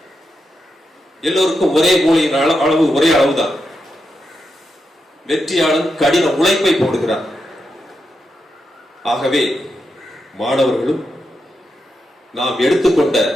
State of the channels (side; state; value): both; normal; correlation 0.86